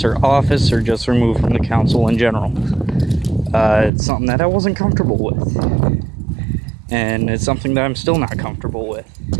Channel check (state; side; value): drops out; left; at 3.9 s